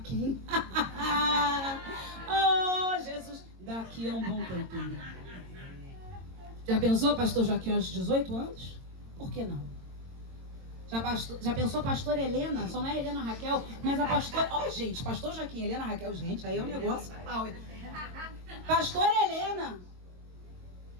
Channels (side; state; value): left; late; 22 ms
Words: Oh, Jesus, daqui a um bom tempinho. Já pensou pastor Joaquim aos 18 anos? Por que não? Já pensou pastor Helena? Só não é Helena Raquel, mas a pastora... Ó, gente, pastor Joaquim, Helena Raquel, gente, aí é um negócio... Pastor Helena.